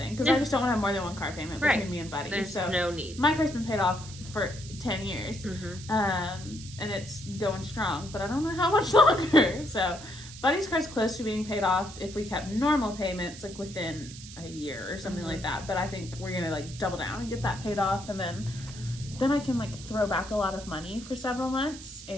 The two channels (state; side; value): noise; right; hiss, 15 dB below the sound